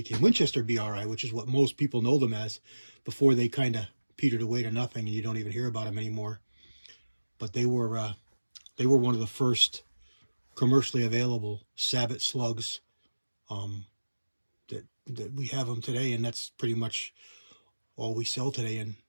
Winchester BRI, which is what most people know them as, before they kind of petered away to nothing, and you don't even hear about them anymore. But they were one of the first commercially available Sabot slugs that we have them today, and that's pretty much all we sell today in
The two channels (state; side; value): inverted; both; correlation -1.00